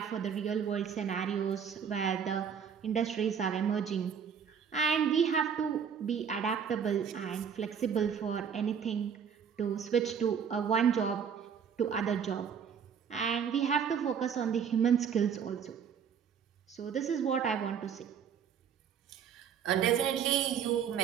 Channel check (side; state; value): left; quieter; 7.3 dB